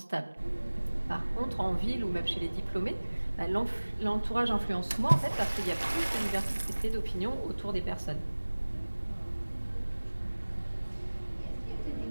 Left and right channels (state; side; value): inverted; both; correlation -1.00